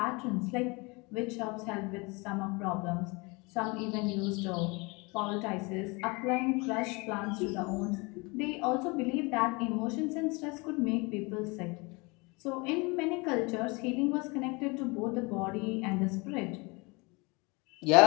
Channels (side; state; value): right; quieter; 27.4 dB